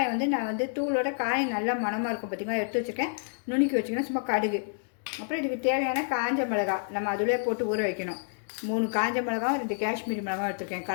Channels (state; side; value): silent; right; digital silence